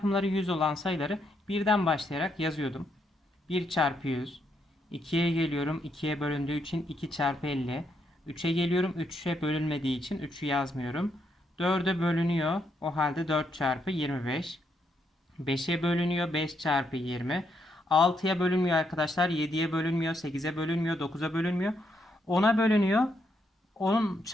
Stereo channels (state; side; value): normal; both; correlation 0.77